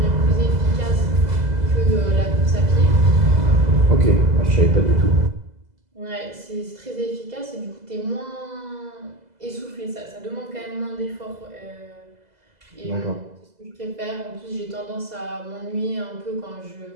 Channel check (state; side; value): late; left; 2.0 ms